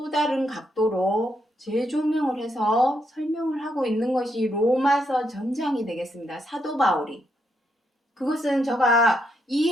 다른 각도로 재조명을 해서 설명을 하고 있는 것이 로마서 전장이 되겠습니다. 사도 바울이. 그것은 제가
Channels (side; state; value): both; normal; correlation 0.78